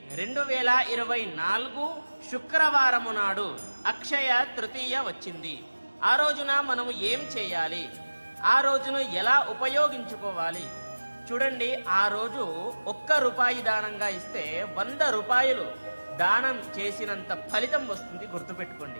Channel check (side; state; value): both; inverted; correlation -1.00